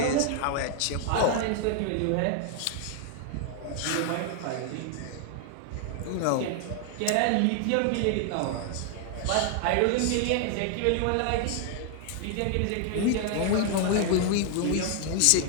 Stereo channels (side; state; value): both; different; correlation 0.00